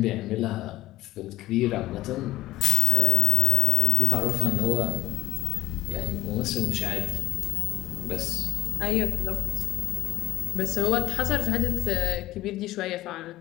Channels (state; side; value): quieter; right; 16.3 dB